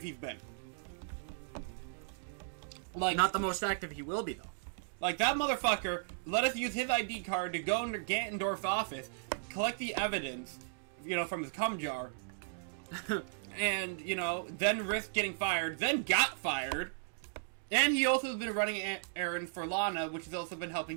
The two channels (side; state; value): left; silent; digital silence